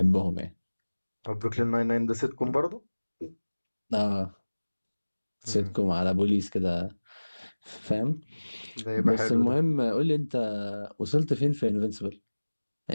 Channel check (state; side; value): inverted; both; correlation -1.00